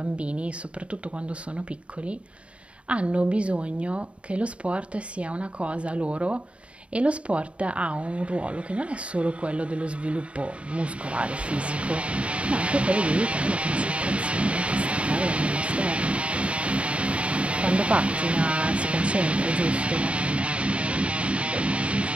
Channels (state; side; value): late; left; 0.061 ms